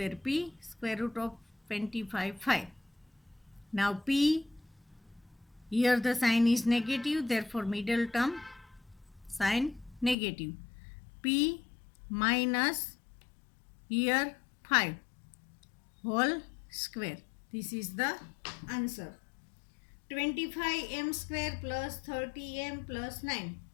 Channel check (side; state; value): right; drops out; at 10.2 s